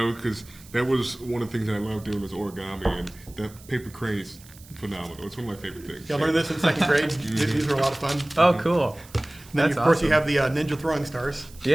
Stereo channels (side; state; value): right; noise; hiss, 22 dB below the sound